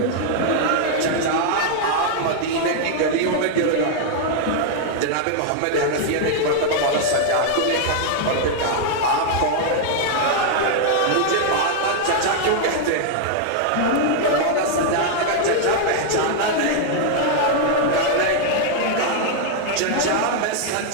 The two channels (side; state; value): both; different; correlation 0.00